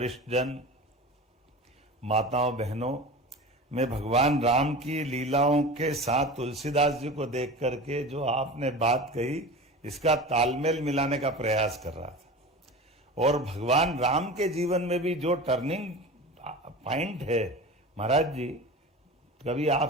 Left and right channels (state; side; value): normal; both; correlation 0.32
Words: जन, माताओं बहनों, मैं भगवान राम की लीलाओं के साथ तुलसीदास जी को देख करके जो आपने बात कही, इसका तालमेल मिलाने का प्रयास कर रहा था। और भगवान राम के जीवन में भी जो टर्निंग पॉइंट है, महाराज जी कभी